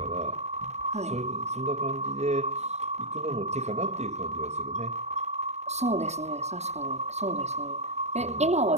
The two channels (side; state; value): left; late; 0.32 ms